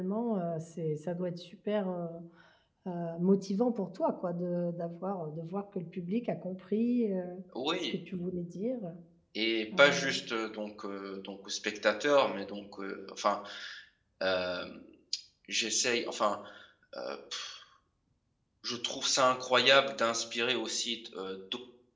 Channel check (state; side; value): identical; both; correlation 1.00